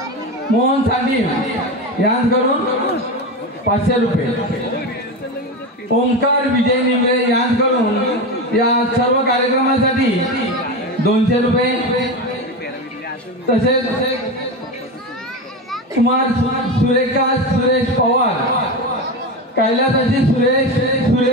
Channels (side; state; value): both; normal; correlation 0.20